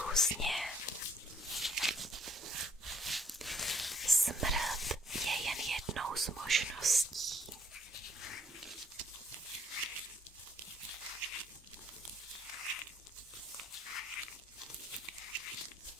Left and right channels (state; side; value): normal; both; correlation 0.65